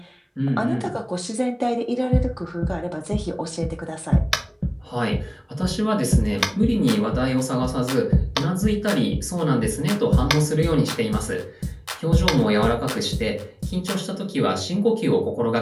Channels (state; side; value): identical; both; correlation 1.00